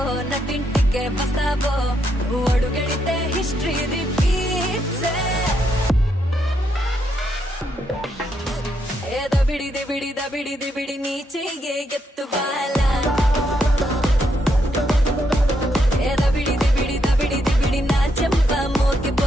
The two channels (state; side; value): normal; both; correlation 0.78